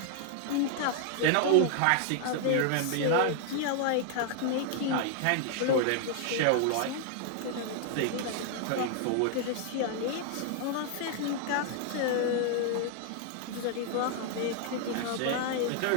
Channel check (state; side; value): different; both; correlation 0.00